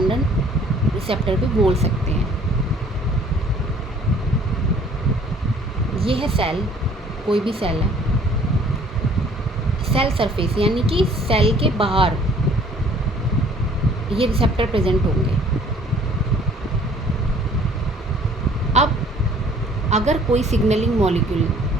रिसेप्टर भी बोल सकते हैं। ये है सेल, कोई भी सेल है, सेल सरफेस यानी कि सेल के बाहर ये रिसेप्टर प्रेजेंट होंगे। अब अगर कोई सिग्नलिंग मॉलिक्यूल,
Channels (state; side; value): normal; both; correlation 0.55